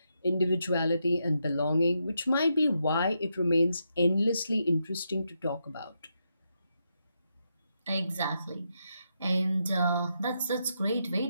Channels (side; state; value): both; inverted; correlation -0.82